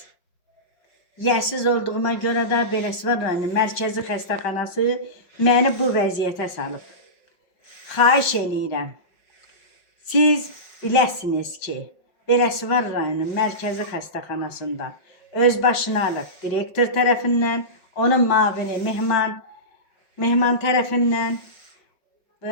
yəsiz olduğuma görə də Beləsuvar rayonunun mərkəzi xəstəxanası məni bu vəziyyətə salıb. Xahiş eləyirəm, siz biləsiniz ki, Beləsuvar rayonunun mərkəzi xəstəxanasında özbaşınalıq direktor tərəfindən, onun mavini Mehman tərəfindən,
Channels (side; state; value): right; late; 5.4 ms